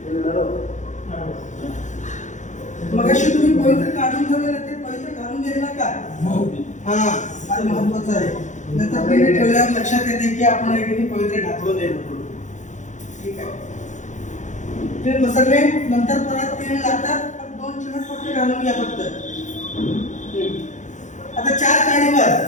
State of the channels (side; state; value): right; late; 0.35 ms